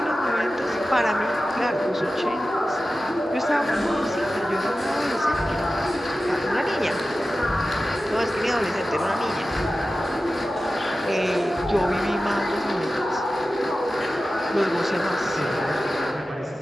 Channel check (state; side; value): normal; both; correlation 0.94